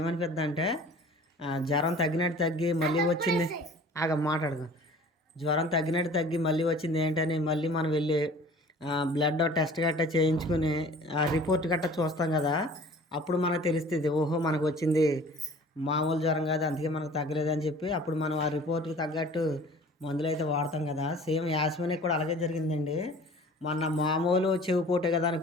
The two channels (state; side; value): normal; both; correlation 0.47